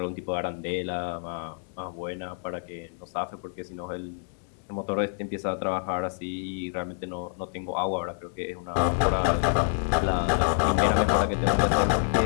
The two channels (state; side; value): silent; right; digital silence